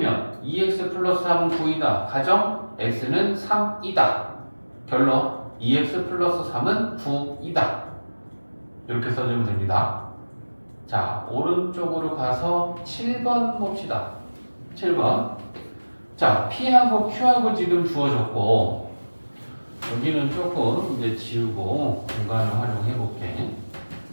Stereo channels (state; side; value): inverted; both; correlation -1.00